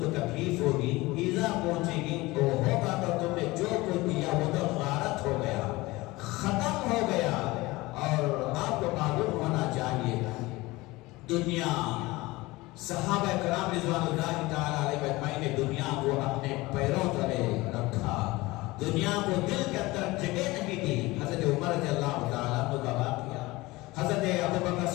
کو تکلیف ہوگی، ایذا پہنچے گی، تو ہوگا تو تم نے جو کچھ دیا وہ تو غارت ہو گیا، ختم ہو گیا۔ اور آپ کو معلوم ہونا چاہیے، دنیا، صحابہ کرام رضوان اللہ تعالیٰ علیہ اجمعین نے دنیا کو اپنے پیروں تلے رکھا، دنیا کو دل کے اندر جگہ نہیں دی۔ حضرت عمر رضی اللہ تعالیٰ عنہ کا واقعہ، حضرت ابوبکر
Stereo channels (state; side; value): quieter; right; 20.8 dB